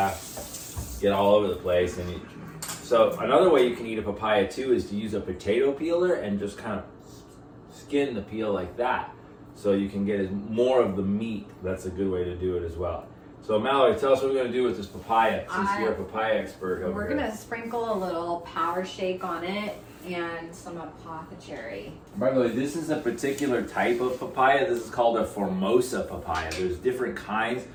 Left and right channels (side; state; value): both; identical; correlation 1.00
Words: get all over the place. So another way you can eat a papaya too is to use a potato peeler and just kind of skin the peel like that, so you can get more of the meat. That's a good way to do it as well. So Mallory, tell us what we're going to do with this papaya, since you're a papaya expert over We're here. going to sprinkle a little power shake on it and some apothecary. By the way, this is a particular type of papaya. This is called a Formosa papaya. There's different kinds.